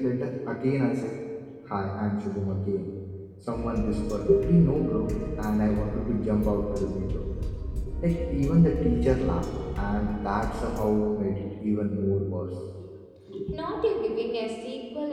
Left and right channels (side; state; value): both; identical; correlation 1.00